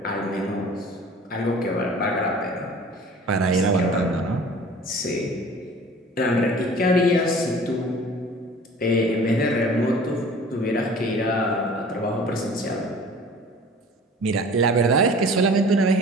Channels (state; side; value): normal; both; correlation 0.45